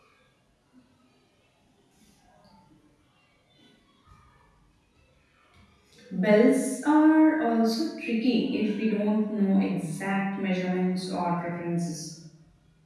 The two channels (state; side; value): identical; both; correlation 1.00